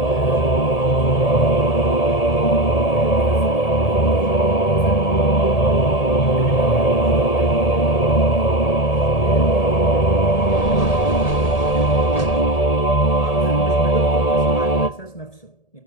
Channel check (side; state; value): right; late; 1.8 ms